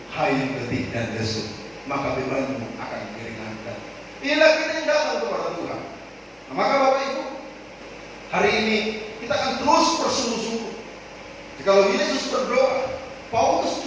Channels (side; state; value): both; identical; correlation 1.00